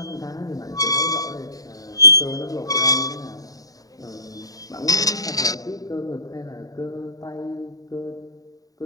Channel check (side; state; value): right; late; 0.18 ms